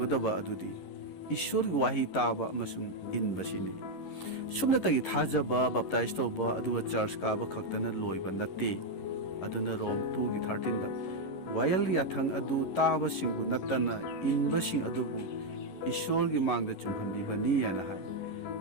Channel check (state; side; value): late; right; 11 ms